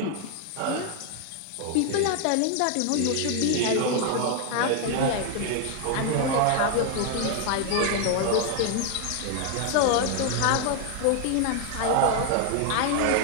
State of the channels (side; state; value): both; different; correlation 0.00